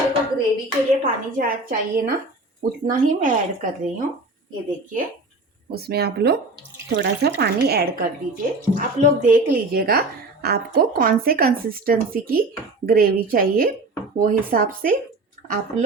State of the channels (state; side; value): quieter; left; 3.0 dB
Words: को ग्रेवी के लिए पानी चाहिए ना, उतना ही मैं ऐड कर रही हूँ। ये देखिए, उसमें आप लोग थोड़ा सा पानी ऐड कर दीजिए। आप लोग देख लीजिएगा आपको कौन से कंसिस्टेंसी की ग्रेवी चाहिए, वो हिसाब से आप